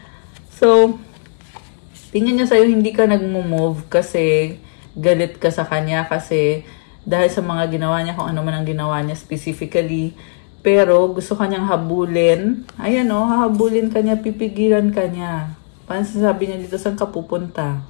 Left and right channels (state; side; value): silent; right; 64 dB below the other